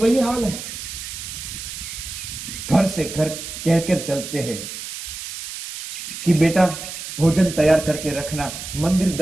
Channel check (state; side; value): noise; right; hiss, 9 dB below the sound